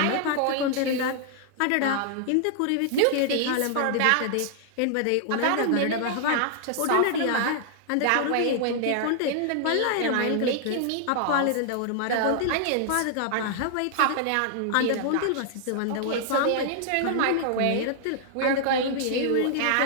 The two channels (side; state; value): both; different; correlation 0.00